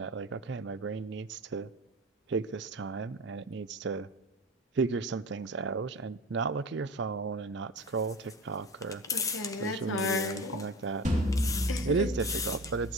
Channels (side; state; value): both; normal; correlation 0.31